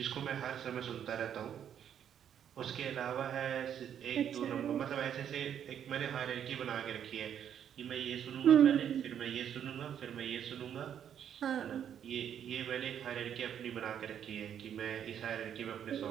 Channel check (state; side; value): quieter; left; 9.2 dB